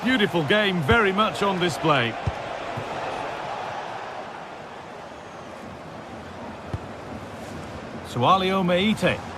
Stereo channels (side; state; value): both; identical; correlation 1.00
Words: beautiful game very much on display. Sualio Meite.